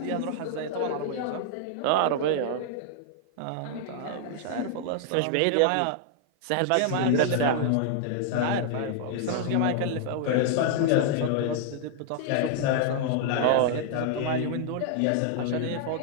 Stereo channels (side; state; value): both; different; correlation -0.01